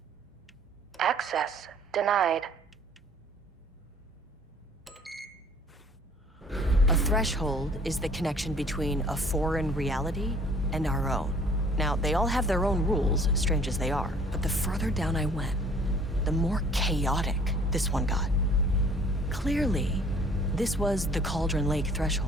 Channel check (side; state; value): both; normal; correlation 0.54